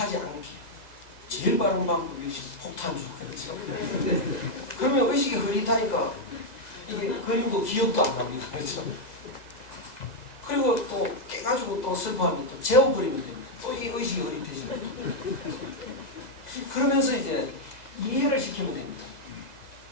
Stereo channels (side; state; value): right; late; 2.0 ms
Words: 않게. 제일 빠른 방법이 역시 폭탄주. 그렇죠? 그러면 의식이 흐릿하니까 이게 그림도 기억도 안 납니다. 그렇죠? 그리고 또 깨가지고 또 슬퍼하면 또 재워버리면 됩니다. 또 이 의식이 흐릿해집니다. 그러면서 이제 이해를 시키면 됩니다.